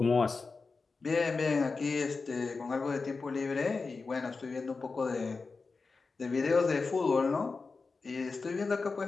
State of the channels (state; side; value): quieter; right; 4.3 dB